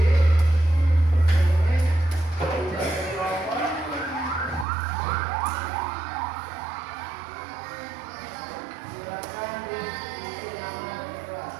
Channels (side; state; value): left; drops out; at 4.7 s